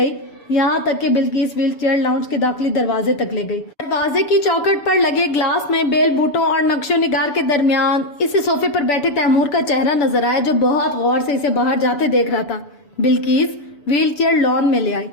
یہاں تک کہ بلقیس ویل چیئر لاؤنج کے داخلی دروازے تک لے گئی۔ دروازے کی چوکھٹ پر لگے گلاس میں بیل بوٹوں اور نقش و نگار کے درمیان اسے صوفے پر بیٹھے تیمور کا چہرہ نظر آیا، جو بہت غور سے اسے باہر جاتے دیکھ رہا تھا۔ بلقیس ویل چیئر لان میں لے آئی،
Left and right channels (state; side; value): late; right; 7.0 ms